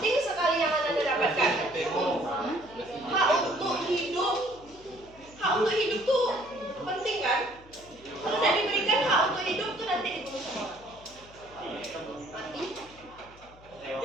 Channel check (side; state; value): left; noise; hum, 23 dB below the sound